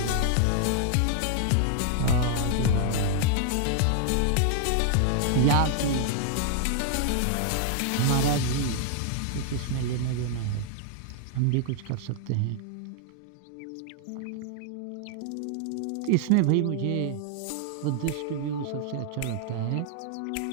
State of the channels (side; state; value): both; different; correlation 0.00